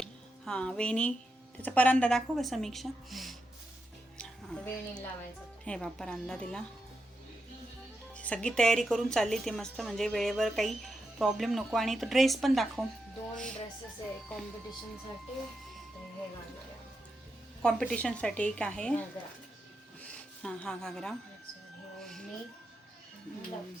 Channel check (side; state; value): both; normal; correlation 0.86